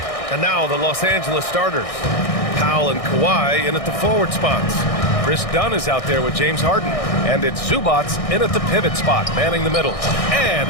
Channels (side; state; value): right; late; 1.6 ms